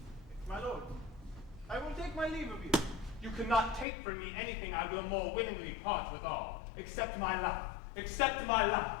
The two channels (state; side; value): drops out; right; at 3.9 s